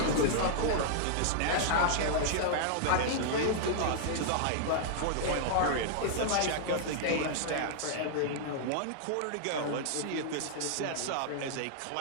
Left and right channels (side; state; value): both; different; correlation -0.01